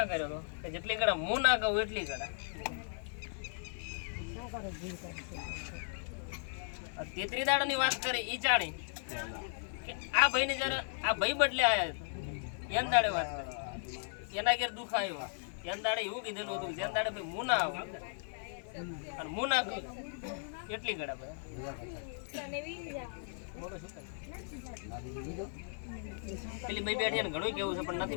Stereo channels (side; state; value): right; silent; 53 dB below the other